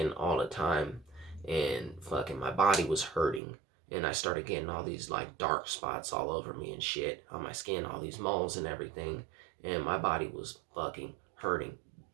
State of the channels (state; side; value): drops out; left; at 3.4 s